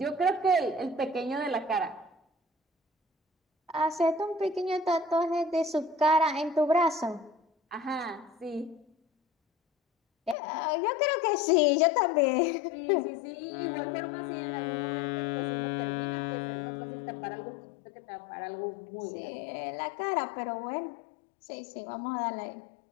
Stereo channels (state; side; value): drops out; right; at 10.4 s